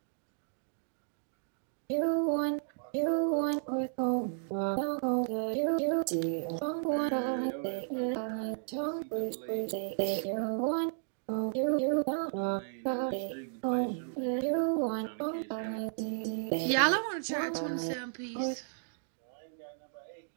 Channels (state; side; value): silent; left; digital silence